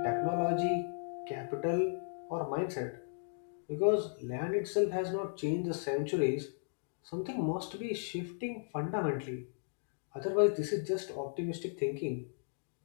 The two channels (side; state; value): right; silent; digital silence